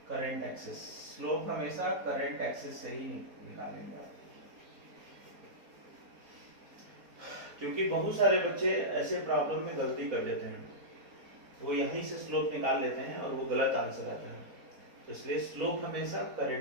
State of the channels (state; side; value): late; left; 4.2 ms